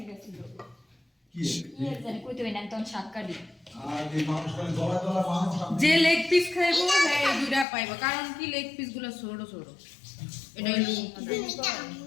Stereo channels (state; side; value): drops out; right; at 7.7 s